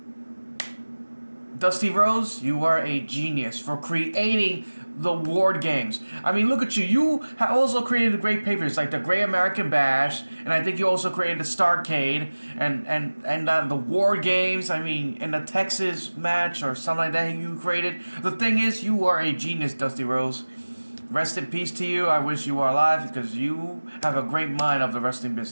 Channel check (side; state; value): both; inverted; correlation -1.00